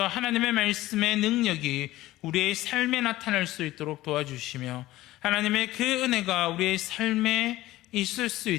하나님의 말씀의 능력이 우리의 삶에 나타날 수 있도록 도와주시며 하나님의 그 은혜가 우리의 삶에 있을 수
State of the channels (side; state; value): right; quieter; 16.6 dB